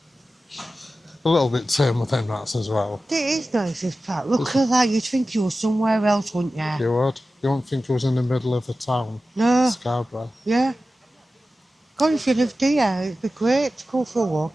A little bit tame with them rats as well. It is nice, this park. Look at that. You'd think you were somewhere else, wouldn't you? You would. You wouldn't think it was in the middle of the town. No. Scarborough. Yeah. God, if you lived here, it'd be great to go for a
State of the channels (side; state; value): both; normal; correlation 0.94